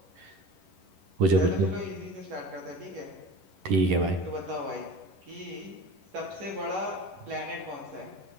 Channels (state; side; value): late; left; 11 ms